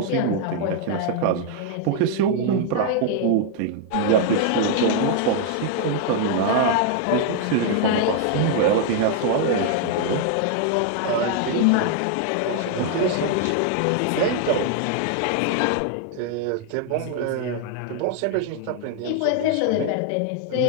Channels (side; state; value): both; different; correlation 0.00